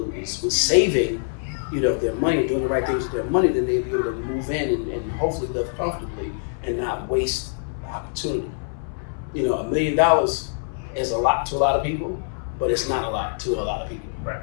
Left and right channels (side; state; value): right; silent; 59 dB below the other